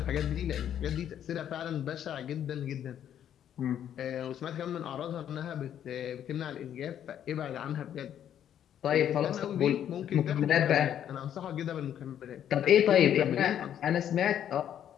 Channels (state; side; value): quieter; right; 10.0 dB